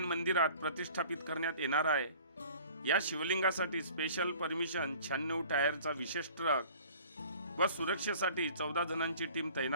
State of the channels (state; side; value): inverted; both; correlation -0.48